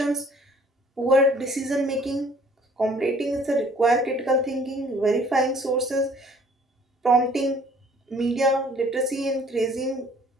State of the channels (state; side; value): normal; both; correlation 0.56